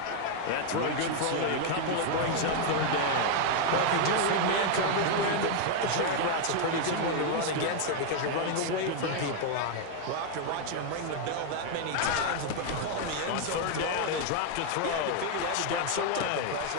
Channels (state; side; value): different; both; correlation 0.00